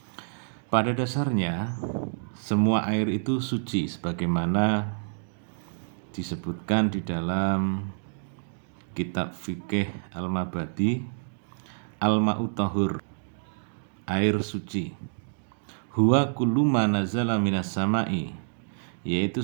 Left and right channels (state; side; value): silent; left; digital silence